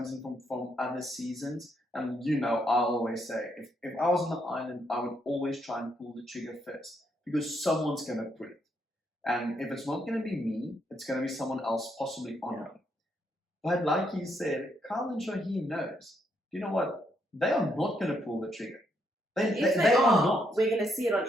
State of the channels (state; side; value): normal; both; correlation 0.76